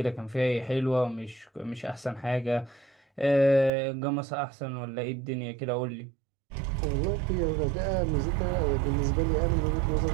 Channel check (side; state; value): left; drops out; at 3.7 s